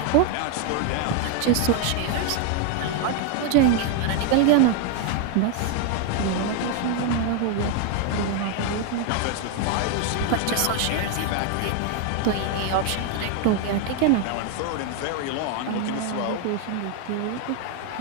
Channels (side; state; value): both; different; correlation 0.01